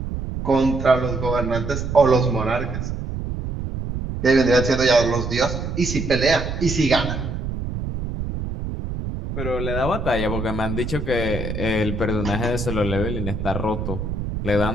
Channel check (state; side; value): noise; right; rumble, 5 dB below the sound